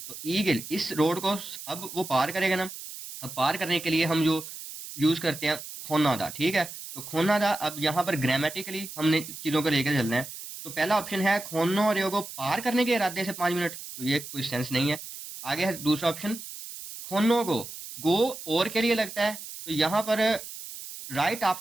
तो ईगल इस रोड को अब वो पार करेगा ना। अब पार करने के लिए हम जो यूज करते हैं खोना था, ठीक है। तो खोना था, अब यहाँ पर ग्रामेटिकली हमने चीजों को लेकर चलना है। तो पहला ऑप्शन है खोनो रेयो को पार करने के इरादे से 5 मिनट, तो ये कोई सेंस नहीं है। आगे है दूसरा ऑप्शन खोनो को गो और के लिए लगता है, तो यहाँ पर राइट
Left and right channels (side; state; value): right; noise; hiss, 11 dB below the sound